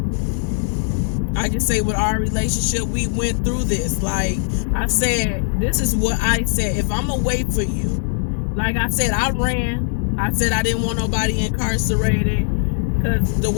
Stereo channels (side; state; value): right; silent; digital silence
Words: I can say with our relationship, we went through this. Like I said, this is what I said. If I'm gonna wait for you, like I said, I ran. I said I didn't want nobody incarcerated, because the